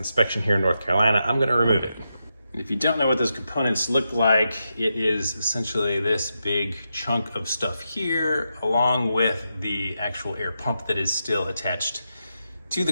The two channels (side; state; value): both; inverted; correlation -0.86